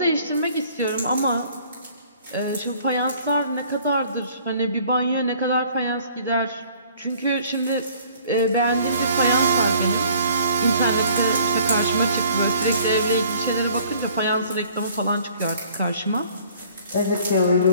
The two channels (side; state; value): both; inverted; correlation -0.55